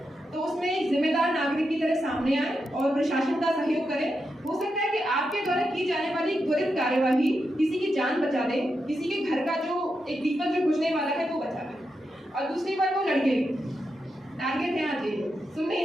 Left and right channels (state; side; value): normal; both; correlation 0.86